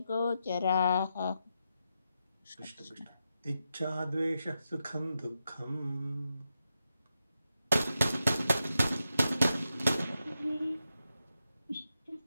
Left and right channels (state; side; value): inverted; both; correlation -0.86